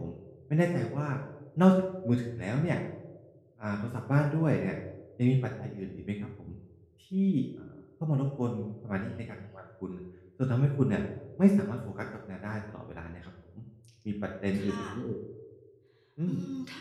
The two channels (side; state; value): both; identical; correlation 1.00